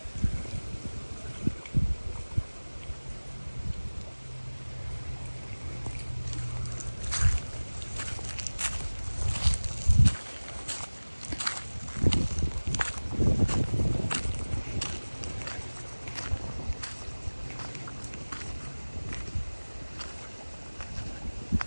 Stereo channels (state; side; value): inverted; both; correlation -1.00